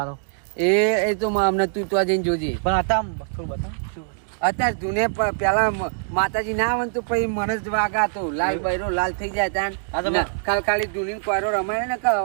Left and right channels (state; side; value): silent; left; digital silence